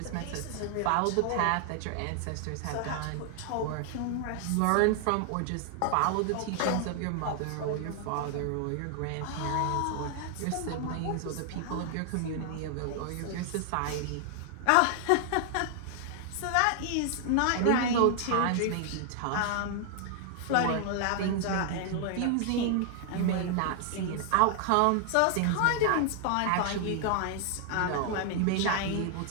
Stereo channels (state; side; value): different; both; correlation 0.00